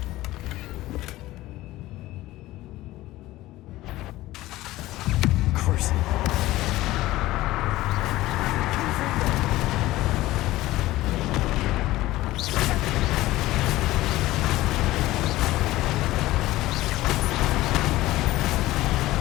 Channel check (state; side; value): quieter; right; 17.1 dB